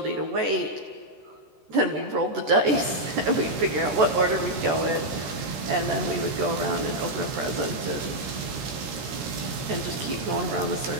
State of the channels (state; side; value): late; left; 13 ms